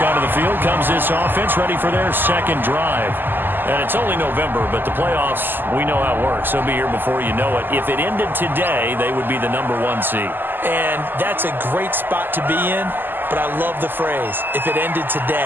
onto the field comes this offense, ready for their 2nd drive. And it's only November, but the playoffs, we know how it works. They'll be here before you know it. If it ended today, they would be the #1 seed. And that's a great spot to be in, but I love the phrase, if it ended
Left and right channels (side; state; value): left; late; 0.093 ms